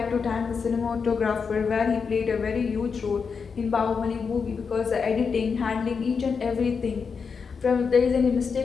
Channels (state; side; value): quieter; right; 5.6 dB